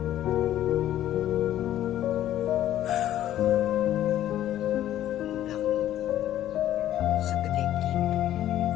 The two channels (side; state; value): right; quieter; 12.5 dB